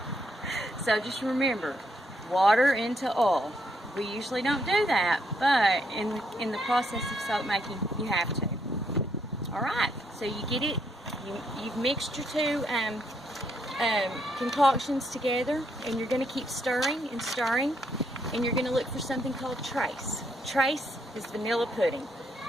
So just remember, water into oil. We usually don't do that, but in the process of soap making, you have to. Alright, so you get it, you've mixed your two concoctions together, and you're going to keep stirring and stirring, and you're going to look for something called trace. Trace is vanilla pudding.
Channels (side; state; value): both; normal; correlation 0.75